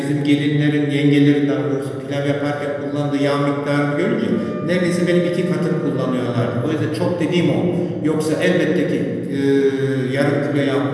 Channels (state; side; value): identical; both; correlation 1.00